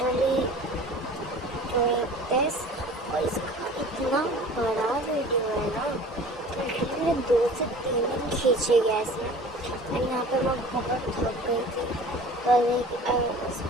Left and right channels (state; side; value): normal; both; correlation 0.43